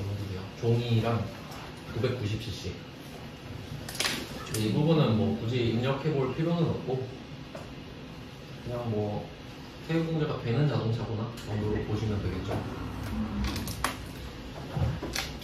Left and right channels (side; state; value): both; identical; correlation 1.00